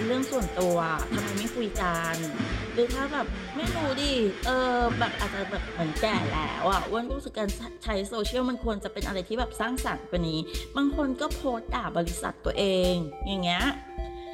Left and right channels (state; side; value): identical; both; correlation 1.00